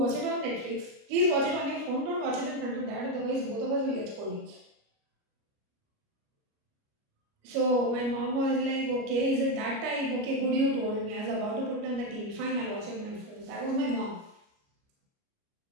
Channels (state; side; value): late; left; 29 ms